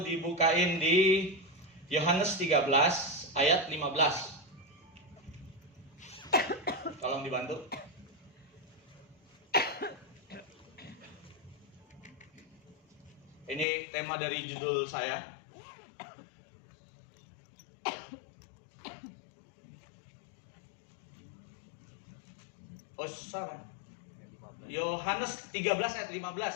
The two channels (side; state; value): right; drops out; at 13.7 s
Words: di Yohanes 13 ayat 15. Tolong dibantu. Ini tema dari judul saya. Oh, salah. Yohanes 13 ayat 15.